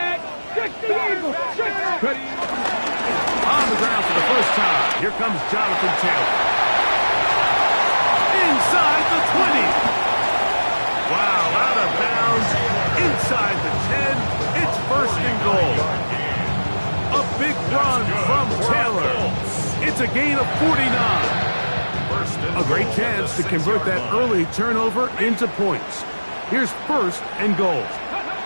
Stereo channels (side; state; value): both; inverted; correlation -1.00